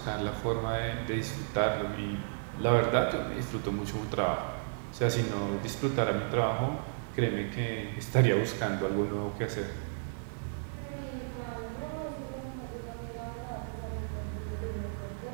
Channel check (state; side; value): silent; left; 56 dB below the other